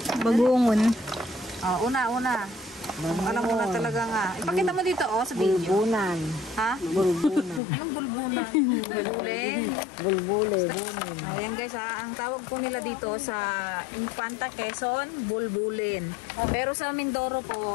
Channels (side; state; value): right; drops out; at 7.6 s